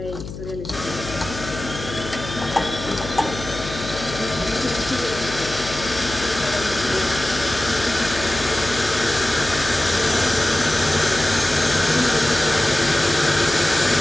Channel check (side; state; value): left; noise; hum, 11 dB below the sound